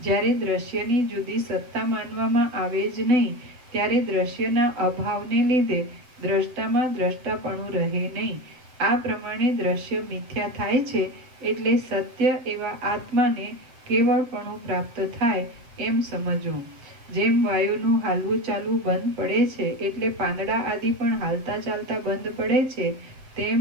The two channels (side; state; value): left; late; 7.8 ms